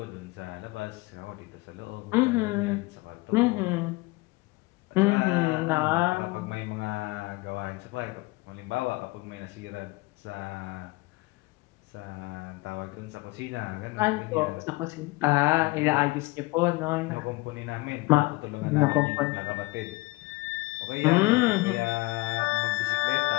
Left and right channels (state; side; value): quieter; right; 22.6 dB